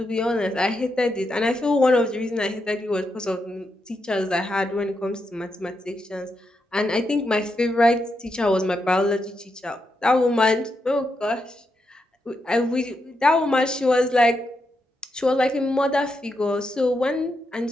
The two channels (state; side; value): normal; both; correlation 0.84